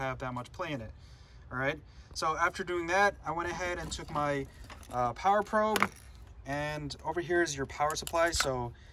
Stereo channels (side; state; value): both; identical; correlation 1.00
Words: that much play in it. All right, so after doing that, I went ahead and took my power probe, and over here is your power supply. So